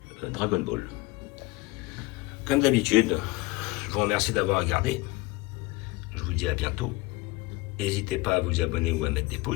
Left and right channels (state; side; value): quieter; right; 22.0 dB